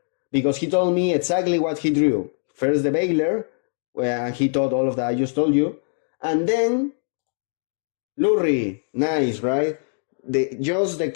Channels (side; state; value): right; silent; digital silence